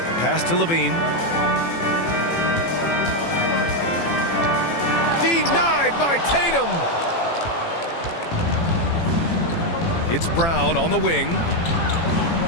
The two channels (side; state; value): right; late; 18 ms